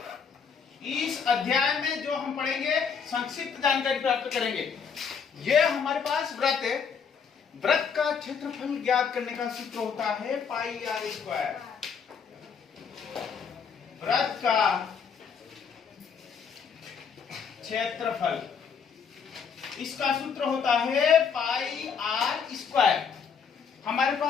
इस अध्याय में जो हम पढ़ेंगे संक्षिप्त जानकारी प्राप्त करेंगे। ये हमारे पास व्रत है, व्रत का क्षेत्रफल ज्ञात करने का सूत्र होता है पाई आर स्क्वायर। व्रत का क्षेत्रफल, इसका सूत्र होता है पाई आर स्क्वायर। हमारे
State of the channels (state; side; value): quieter; right; 6.5 dB